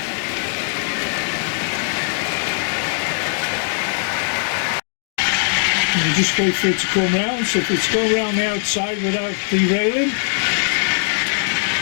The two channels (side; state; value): right; silent; digital silence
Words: And you just wait for it to come round, so if it's going around the outside without derailing,